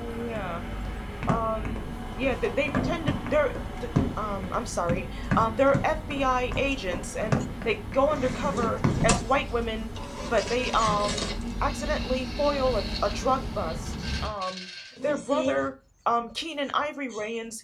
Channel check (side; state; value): both; identical; correlation 1.00